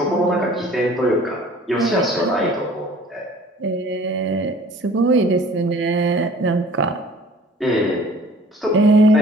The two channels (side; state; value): both; normal; correlation 0.50